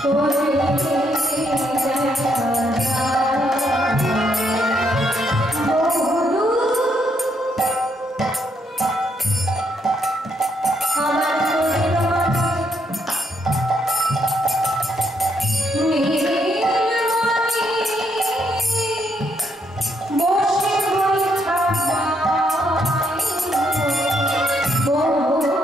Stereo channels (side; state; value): both; normal; correlation 0.75